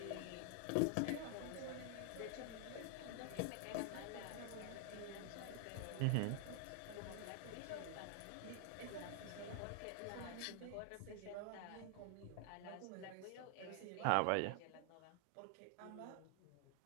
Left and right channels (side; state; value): both; different; correlation 0.00